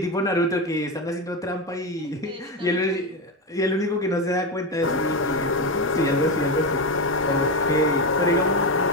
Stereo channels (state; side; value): normal; both; correlation 0.14